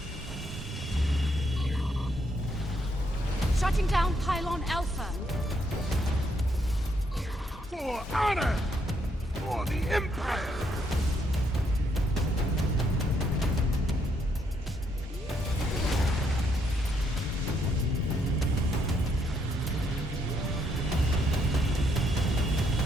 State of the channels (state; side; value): normal; both; correlation 0.74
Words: Shutting down Pylon Alpha. For honor! for the Empire!